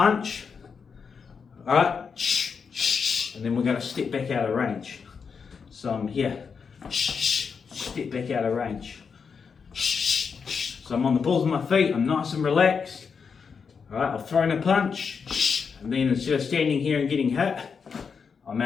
Alright, and then we're going to step back out of range. So I'm here, step back out of range. So I'm on the balls of my feet, I'm nice and relaxed. Alright, I've thrown a punch, and then instead of standing here and getting hit, I'm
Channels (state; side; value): quieter; right; 5.9 dB